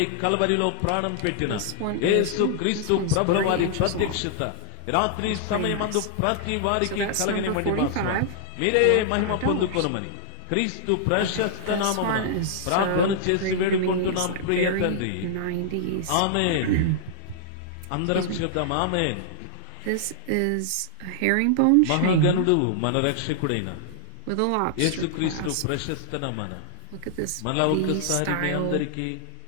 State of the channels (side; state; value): both; different; correlation -0.01